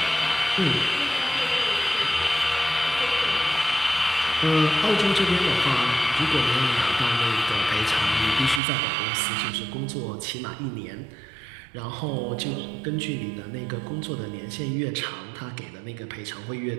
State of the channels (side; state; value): left; drops out; at 8.6 s